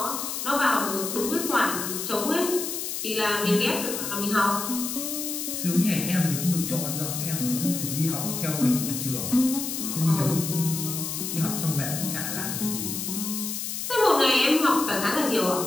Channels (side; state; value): left; noise; hiss, 4 dB below the sound